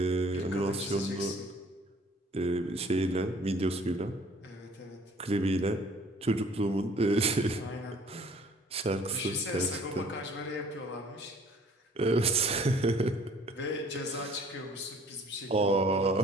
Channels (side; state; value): both; normal; correlation 0.54